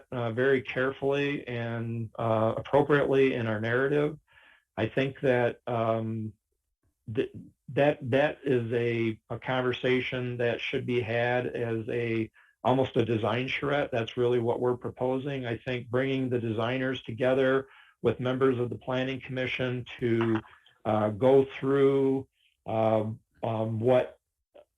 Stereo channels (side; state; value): both; identical; correlation 1.00